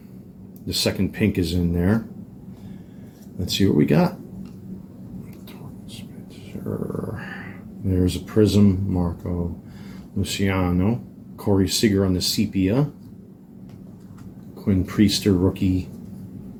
the second pink is in there. Let's see what we got. There's a Prism, Marco Luciano, Corey Seager on the sepia, Quinn Priester rookie.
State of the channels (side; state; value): both; identical; correlation 1.00